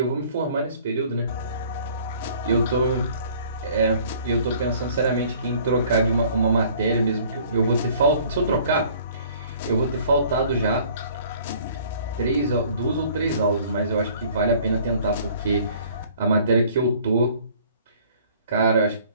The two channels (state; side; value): inverted; both; correlation -0.54